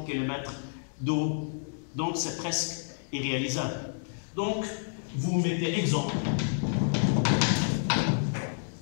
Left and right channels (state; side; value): silent; right; digital silence